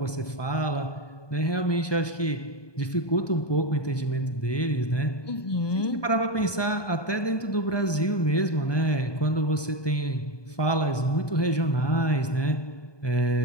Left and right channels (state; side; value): late; right; 1.2 ms